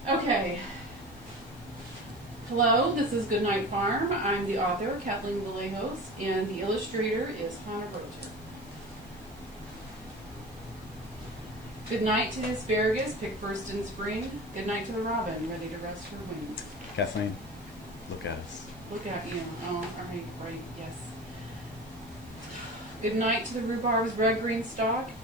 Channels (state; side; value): noise; right; hiss, 25 dB below the sound